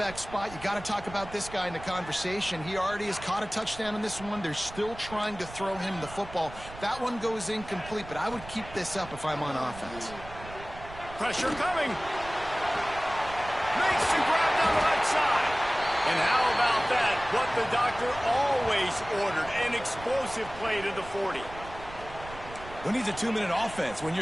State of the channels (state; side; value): noise; right; rumble, 15 dB below the sound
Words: spot, you got to talk about this guy in the conversation. He already has caught a touchdown in this one. They're still trying to throw him the football. That one goes incomplete, but I would keep this up if I'm on offense. Pressure coming. Makes the grab down the right side. And how about that? What the doctor always ordered, an explosive play to the 40. Who needs a 2-minute offense? When